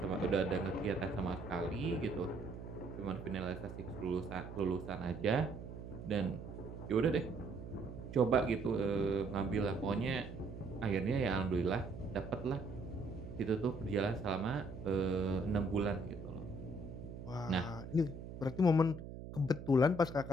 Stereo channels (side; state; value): right; noise; hum, 10 dB below the sound